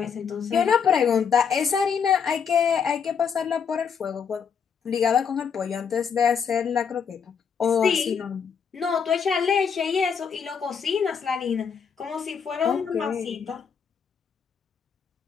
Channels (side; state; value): right; quieter; 6.7 dB